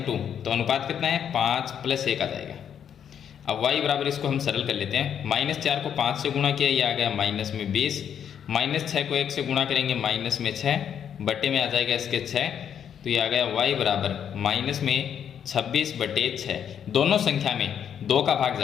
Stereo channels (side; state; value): right; quieter; 8.6 dB